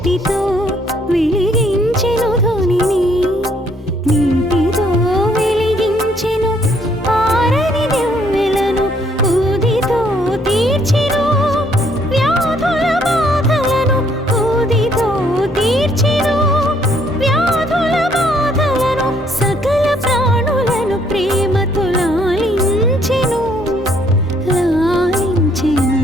వెలిగించెను ధ్వనిని, నీటితో వెలిగించెను ఆరని దివ్వెలను. ఊదితో తీర్చెను వ్యాధుల బాధలను, ఊదితో తీర్చెను వ్యాధుల బాధలను. సకల ప్రాణులను ప్రేమతో లాలించెను, లాలించెను.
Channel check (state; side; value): normal; both; correlation 0.67